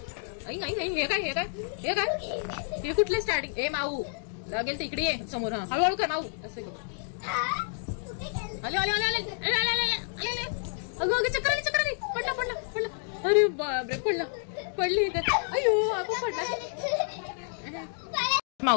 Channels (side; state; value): right; silent; digital silence